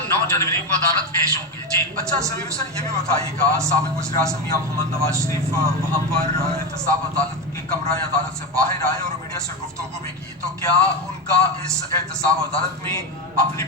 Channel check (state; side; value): normal; both; correlation 0.15